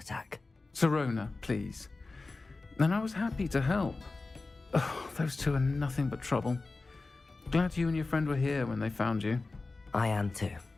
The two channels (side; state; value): right; quieter; 3.6 dB